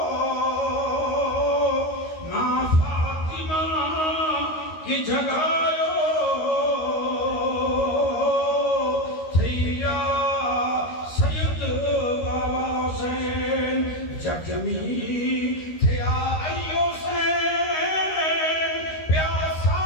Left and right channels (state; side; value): late; right; 13 ms